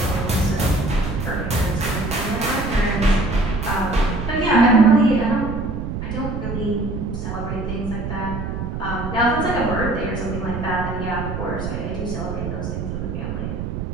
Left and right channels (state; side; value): noise; right; rumble, 4 dB below the sound